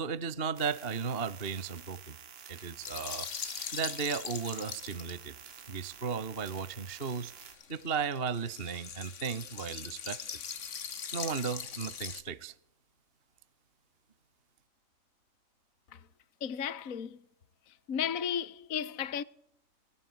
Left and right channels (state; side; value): late; right; 3.5 ms